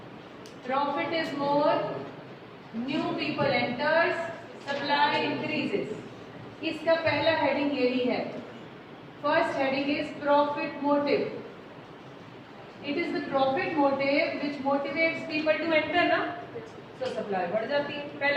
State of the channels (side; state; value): both; identical; correlation 1.00